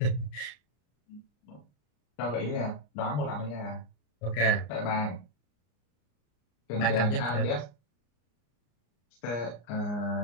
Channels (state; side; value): late; right; 34 ms